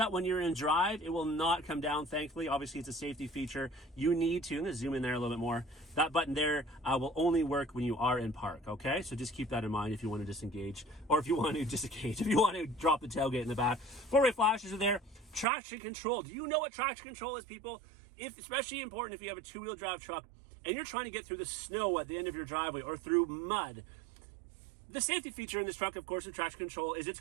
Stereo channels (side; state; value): left; drops out; at 15.5 s